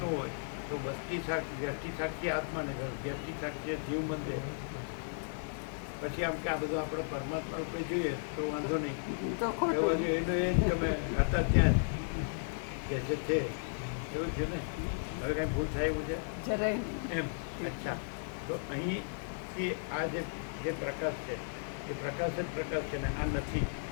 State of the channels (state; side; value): silent; right; digital silence